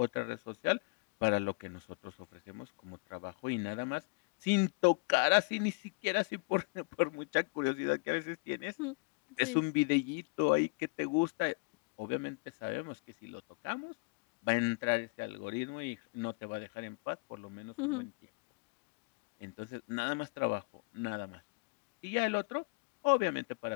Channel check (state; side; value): quieter; right; 31.8 dB